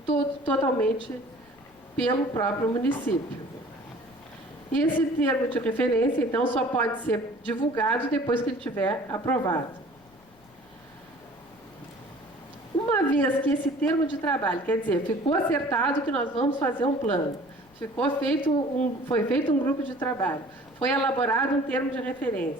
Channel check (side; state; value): left; noise; rumble, 29 dB below the sound